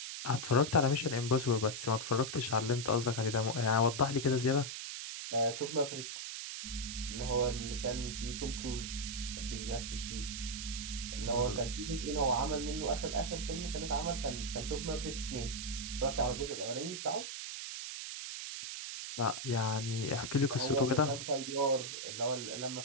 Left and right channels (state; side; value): noise; right; hiss, 6 dB below the sound